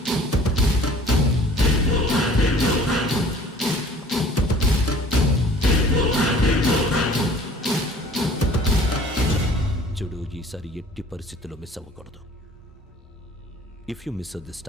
చూడు, ఈసారి ఎట్టి పరిస్థితుల్లో మిస్ అవ్వకూడదు. If you miss this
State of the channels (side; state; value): both; normal; correlation 0.50